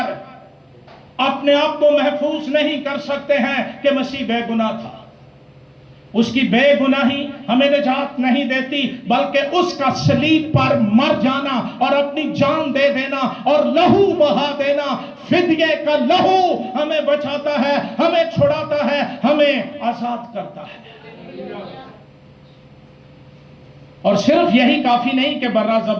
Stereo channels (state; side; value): identical; both; correlation 1.00